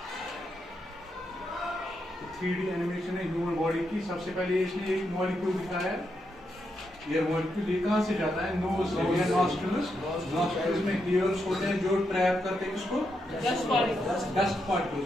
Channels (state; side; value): normal; both; correlation 0.82